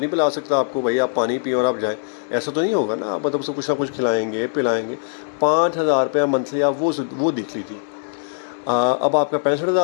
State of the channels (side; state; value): right; silent; digital silence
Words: نہیں پلا سکتا آپ کو، بھائی آپ پانی پئیں اور آپ جائیں، ایسا تو نہیں ہوگا نا۔ آپ مطلب اس کو کچھ نہ کچھ کھلائیں گے، پلائیں گے۔ 5,000 روپیہ منتھلی آپ وہ دیکھ لیجیے۔ اب آپ کا